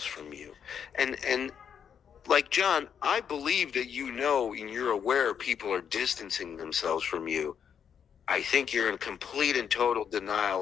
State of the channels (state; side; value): quieter; right; 7.8 dB